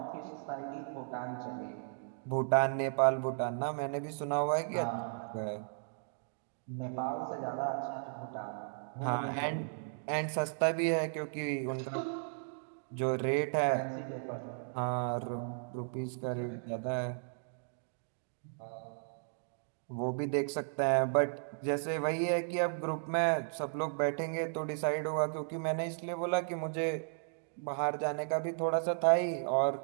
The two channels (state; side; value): silent; left; digital silence